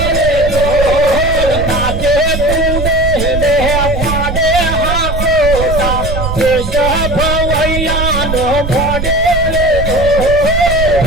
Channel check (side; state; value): right; noise; rumble, 4 dB below the sound